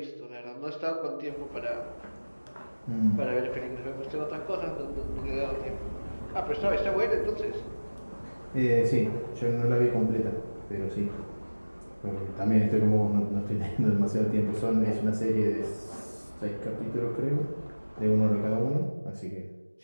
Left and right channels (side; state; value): both; inverted; correlation -1.00